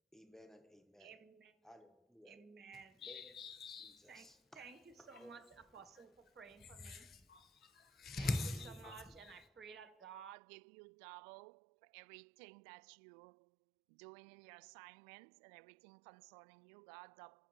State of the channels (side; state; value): left; drops out; at 10.4 s